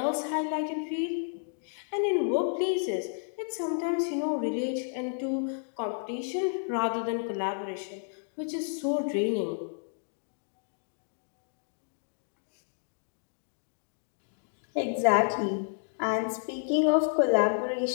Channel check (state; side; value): silent; right; digital silence